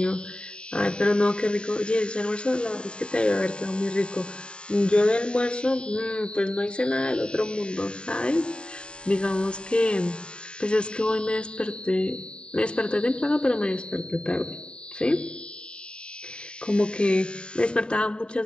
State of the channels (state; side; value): late; right; 0.051 ms